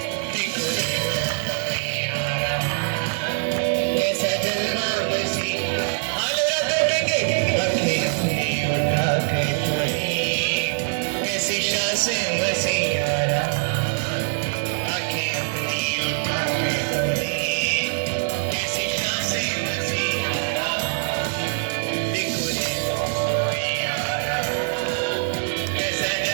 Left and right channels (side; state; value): left; silent; 63 dB below the other